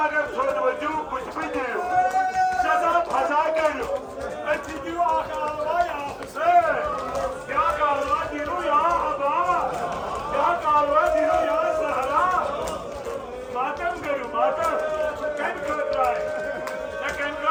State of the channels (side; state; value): both; identical; correlation 1.00